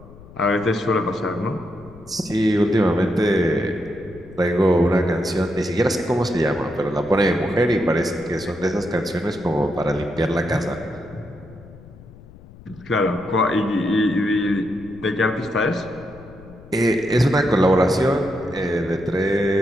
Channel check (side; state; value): left; noise; rumble, 20 dB below the sound